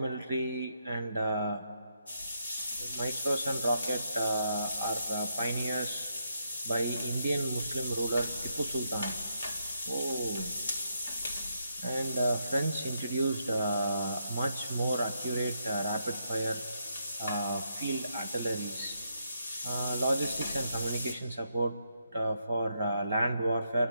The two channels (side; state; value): both; inverted; correlation -0.79